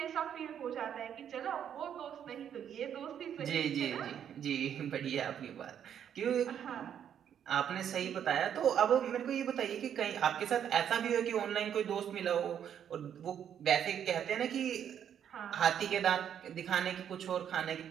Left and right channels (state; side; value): quieter; left; 9.1 dB